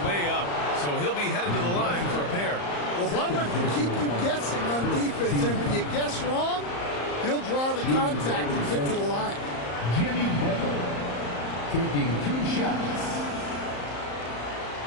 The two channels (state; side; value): late; right; 34 ms